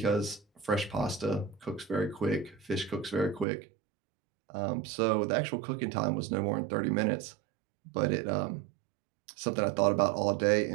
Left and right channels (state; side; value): drops out; left; at 3.5 s